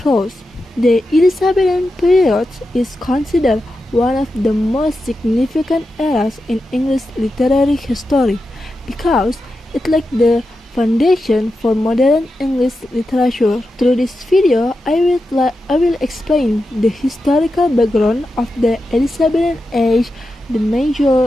prose. The Elizabethan period is considered one of the most significant eras in English literary history because it laid the foundation for modern English literature. Through this video, I will explain the historical background of the Elizabethan age, the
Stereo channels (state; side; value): normal; both; correlation 0.90